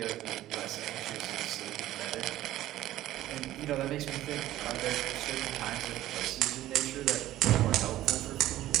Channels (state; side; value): quieter; left; 14.4 dB